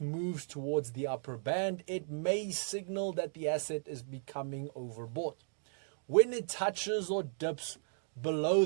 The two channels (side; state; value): left; silent; digital silence